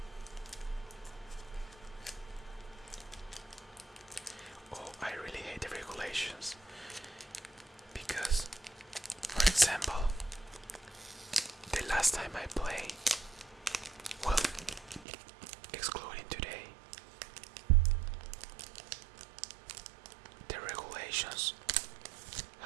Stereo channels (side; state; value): left; drops out; at 15.1 s